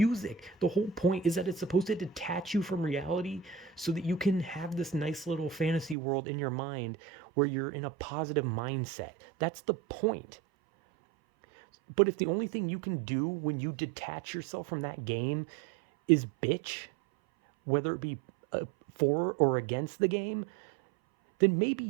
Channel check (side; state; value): left; drops out; at 6.0 s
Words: The whole point is that it's supposed to detach you from reality so that you can have this nice little fantasy world in your mind where you're in a positive mindset. That's the point. But if the only thing you can do when you detach yourself from that game is bitch, whether it be for or against the game, then